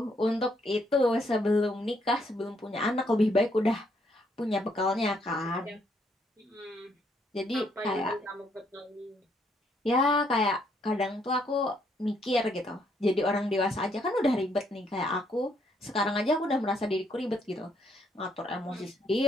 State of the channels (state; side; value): normal; both; correlation 0.71